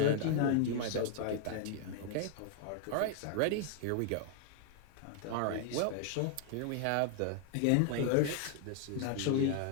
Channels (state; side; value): different; both; correlation 0.00